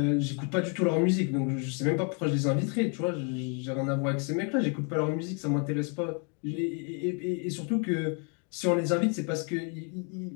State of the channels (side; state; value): right; quieter; 37.9 dB